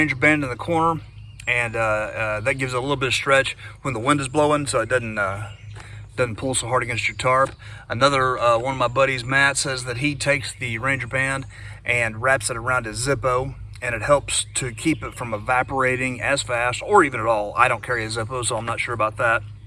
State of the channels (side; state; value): both; identical; correlation 1.00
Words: band in the corner, and that gives it a little bit of stretch when the wind is blowing, so it doesn't pull so hard against your tarp. Another one of my buddies, Matt, says that he takes the ranger band and wraps it around his Zippo, and it helps to keep it from evaporating as fast or even at all. I don't carry a Zippo, so I'm not sure about that.